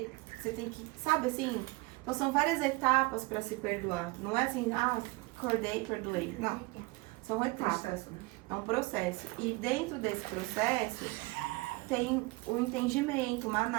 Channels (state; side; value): quieter; left; 23.3 dB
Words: você tem que, sabe assim... Então, são várias etapas para se perdoar. Não é assim, acordei, perdoei. Não, são etapas. É um processo. E dentro desse processo... tem o entendimento, uma